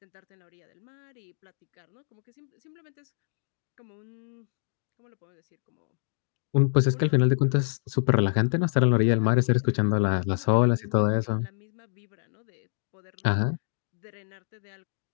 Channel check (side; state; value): right; silent; digital silence